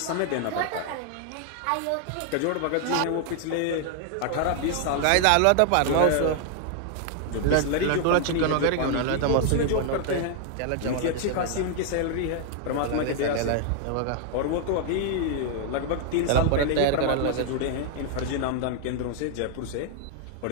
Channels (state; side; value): different; both; correlation 0.00